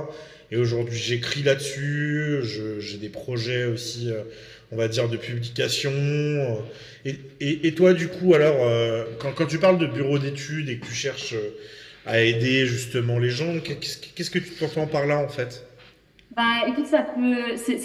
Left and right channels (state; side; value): identical; both; correlation 1.00